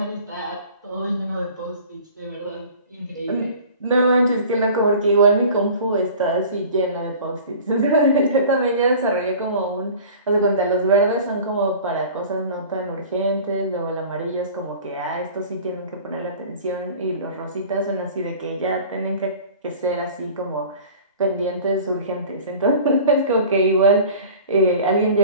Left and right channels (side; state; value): both; inverted; correlation -0.43